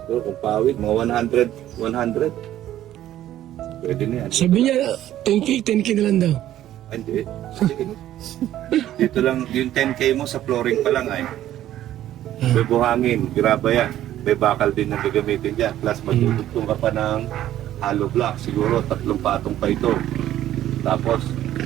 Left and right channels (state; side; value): quieter; left; 12.7 dB